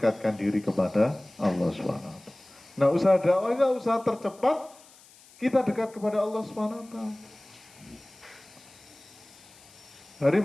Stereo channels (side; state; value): left; noise; hiss, 25 dB below the sound